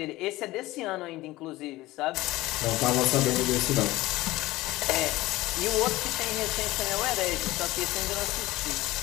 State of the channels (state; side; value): quieter; right; 18.3 dB